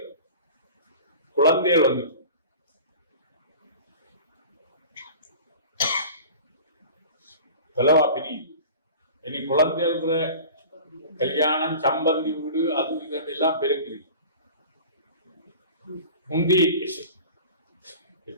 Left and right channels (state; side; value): inverted; both; correlation -0.40